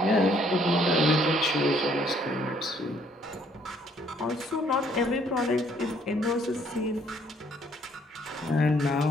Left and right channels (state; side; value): normal; both; correlation 0.64